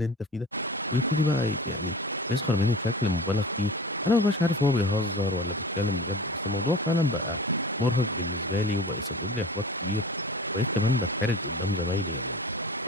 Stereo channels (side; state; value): both; normal; correlation 0.37